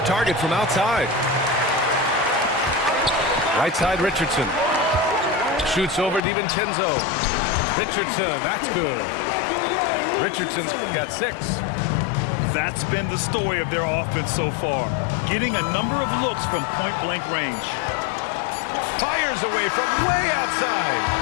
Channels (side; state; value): right; drops out; at 6.2 s